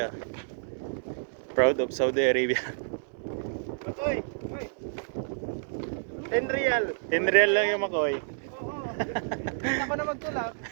Proud of Saudi Arabia. Oy, oy. 10 real. 10 real lang yung makoy. Hindi ako na magtulak.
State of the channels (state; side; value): silent; left; 58 dB below the other